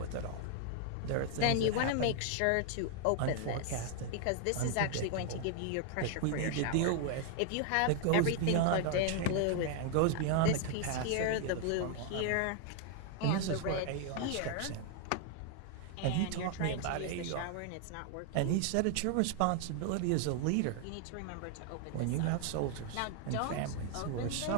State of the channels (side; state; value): both; different; correlation 0.00